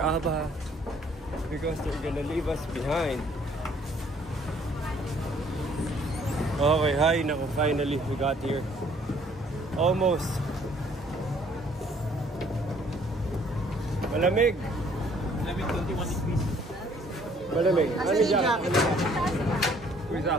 because they're gonna leave us behind. Okay, hi, naku, finally we got here. Almost. Malamig. 21 degrees. Malamig. Ano jacket? Where's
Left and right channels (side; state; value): both; normal; correlation 0.61